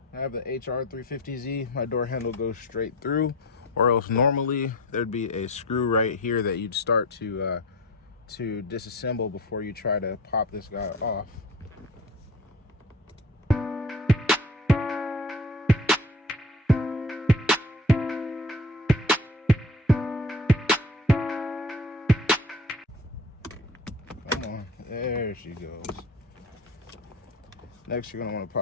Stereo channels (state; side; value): normal; both; correlation 0.39